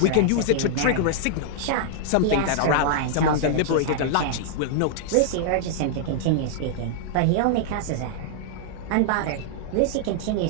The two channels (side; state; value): both; different; correlation -0.01